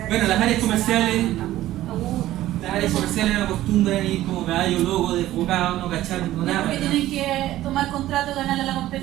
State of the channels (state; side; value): quieter; left; 14.7 dB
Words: Bueno, las áreas comerciales. Las áreas comerciales no acostumbran ir como caballo loco, desbocado, no cachar, no nada. Porque tienen que tomar contrato, ganarle a la